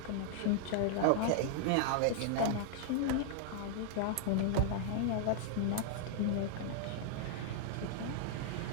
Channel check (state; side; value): different; both; correlation -0.01